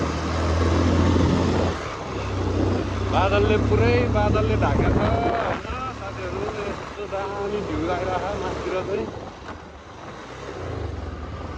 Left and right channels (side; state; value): both; identical; correlation 1.00